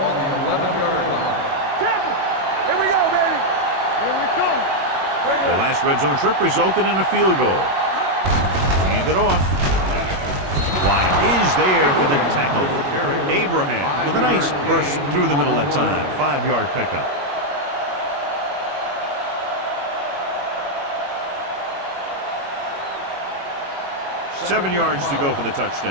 the 11-yard line. Tampa. Here we go, baby. Here we come. The last red zone trip resulted in a field goal. Hand it off. Wyatt is there for the tackle. Abraham with a nice burst through the middle that time. 5-yard pickup. Seven yards to go for the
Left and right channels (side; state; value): left; late; 21 ms